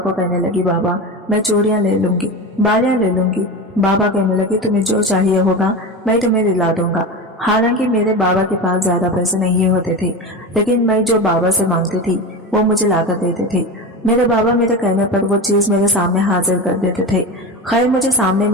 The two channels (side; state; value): both; normal; correlation 0.25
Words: कहने लगी, बाबा मैं चूड़ियां ले लूंगी, बालियां ले लूंगी। बाबा कहने लगे, तुम्हें जो चाहिए होगा मैं तुम्हें दिला दूंगा। हालांकि मेरे बाबा के पास ज्यादा पैसे नहीं होते थे, लेकिन मैं जो बाबा से मांगती थी वो मुझे लाकर देते थे। मेरे बाबा मेरे कहने पर वो चीज मेरे सामने हाजिर कर देते थे। खैर मुझे सामने